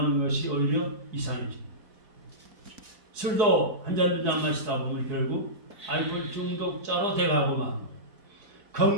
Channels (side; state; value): left; late; 4.7 ms